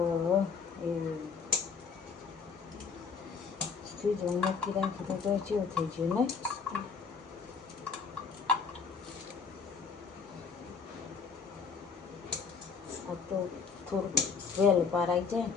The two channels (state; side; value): quieter; right; 5.8 dB